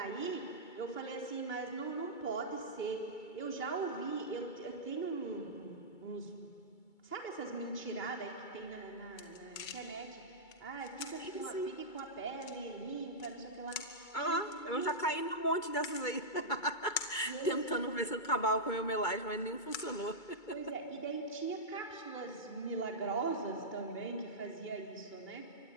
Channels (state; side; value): late; right; 2.3 ms